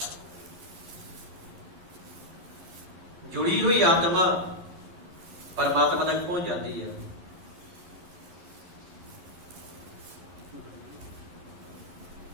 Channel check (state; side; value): late; left; 11 ms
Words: ਜੁੜੀ ਹੋਈ ਆਤਮਾ ਪਰਮਾਤਮਾ ਤੱਕ ਪਹੁੰਚ ਜਾਂਦੀ ਹੈ।